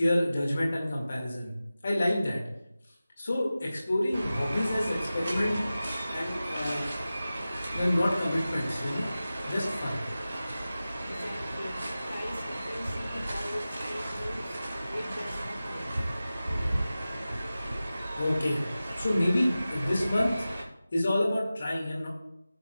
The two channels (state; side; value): inverted; both; correlation -0.95